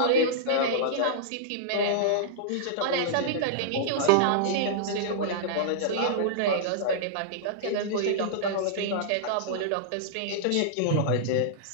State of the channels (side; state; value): both; different; correlation -0.02